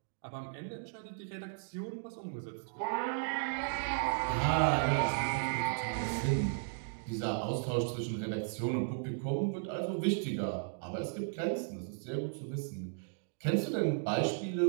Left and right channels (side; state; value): left; silent; digital silence